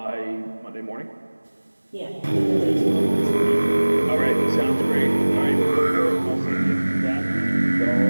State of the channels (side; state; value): both; inverted; correlation -1.00